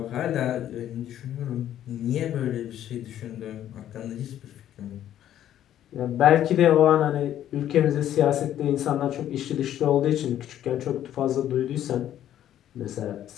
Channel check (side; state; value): right; quieter; 11.5 dB